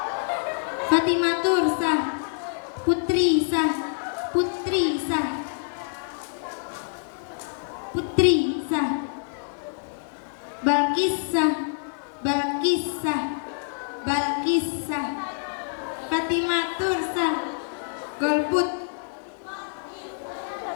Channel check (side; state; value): right; silent; digital silence